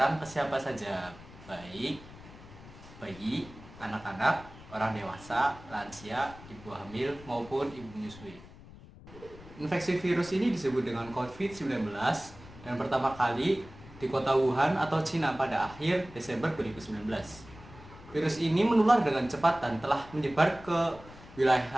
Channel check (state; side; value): noise; left; rumble, 18 dB below the sound